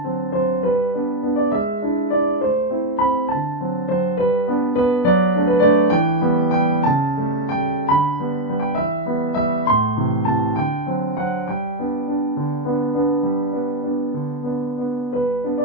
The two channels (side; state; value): right; late; 28 ms